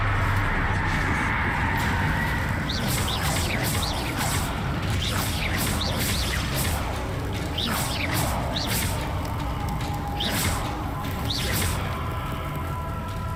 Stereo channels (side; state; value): both; identical; correlation 1.00